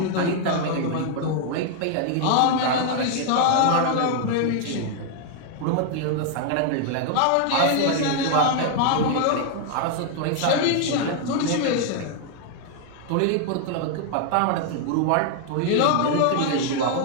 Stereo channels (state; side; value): different; both; correlation 0.00